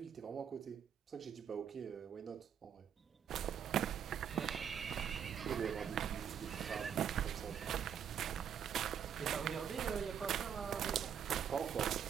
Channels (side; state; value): left; quieter; 8.4 dB